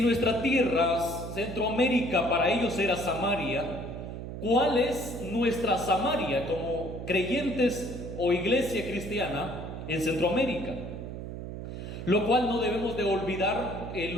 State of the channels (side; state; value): right; noise; hum, 8 dB below the sound